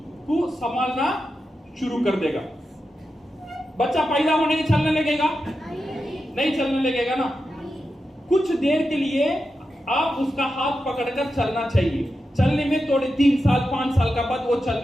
को संभालना शुरू कर देगा। बच्चा पैदा होने के चलने लगेगा? नहीं चलने लगेगा ना। कुछ देर के लिए आप उसका हाथ पकड़कर चलना चाहिए। चलने में थोड़े 3 साल 5 साल का बाद वो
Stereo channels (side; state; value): both; normal; correlation 0.89